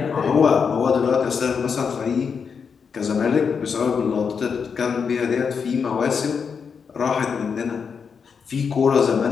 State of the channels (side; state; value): right; quieter; 6.1 dB